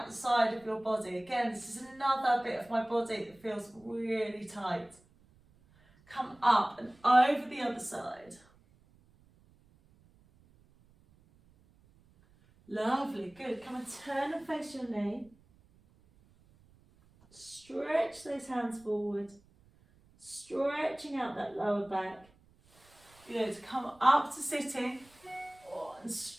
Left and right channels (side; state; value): right; noise; rumble, 29 dB below the sound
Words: the side of your body. Again, this is another bit of my body that feels really tight. Come up and over the other side. Lovely, good. Come and turn and face your knee. Stretch those hands forward. Stretching out that lower back. Good, come up to sitting. Oh, and